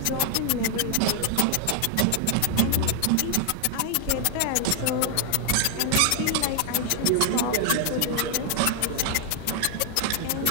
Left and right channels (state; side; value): different; both; correlation 0.00